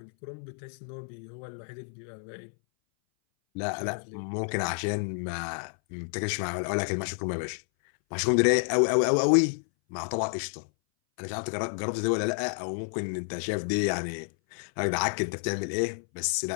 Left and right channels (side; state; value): right; silent; 58 dB below the other